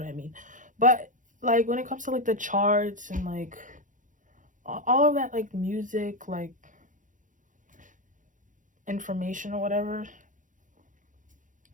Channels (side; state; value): left; late; 0.37 ms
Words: I mean. But like when it comes to like the charts and like all of that, like music, like information or whatever,